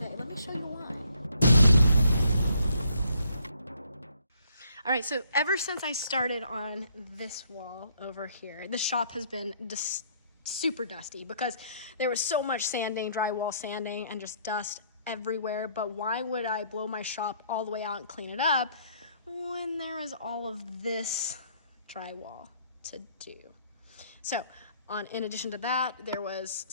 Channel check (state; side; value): inverted; both; correlation -0.66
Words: Let me show you why. All right, so ever since I started on this wall over here, the shop has been just super dusty because there was so much sanding, drywall sanding, and just dust everywhere. But why would I blow my shop all the way out and clean it up when there was all of this drywall to do? So in addition to that, there was